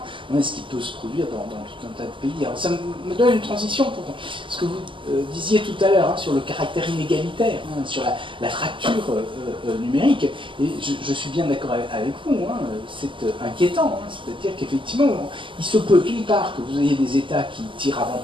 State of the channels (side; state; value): left; late; 0.25 ms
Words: et ce qui peut se produire dans tout un tas de pays. Alors ça me donne une transition pour ce que vous disiez tout à l'heure sur le caractère inégalitaire, sur la fracture numérique. Et je suis bien d'accord avec vous, c'est inquiétant. C'est-à-dire qu'effectivement, il se peut d'une part que vous ayez des États qui tirent